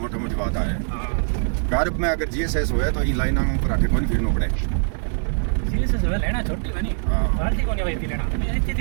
मोटी बात है। गारब में अगर जीएसएस होया तो ये लाइन पर आके कौन फिरना पड़े। जीएसएस है लेना छोटी बनी बाल्टी को नहीं वही लेना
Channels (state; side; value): silent; left; digital silence